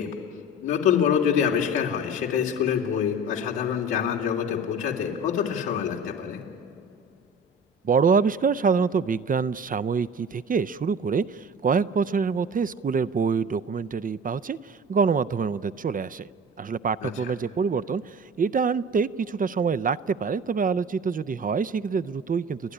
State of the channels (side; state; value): both; normal; correlation 0.38